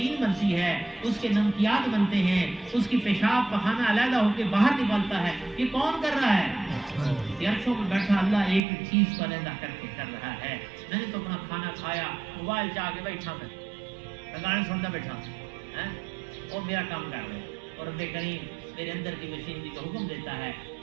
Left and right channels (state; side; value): drops out; left; at 8.6 s